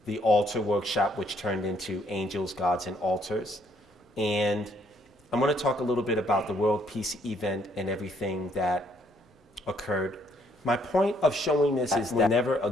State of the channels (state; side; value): normal; both; correlation 0.67